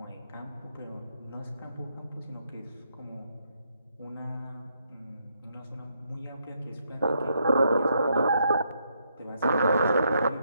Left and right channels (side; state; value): both; inverted; correlation -0.76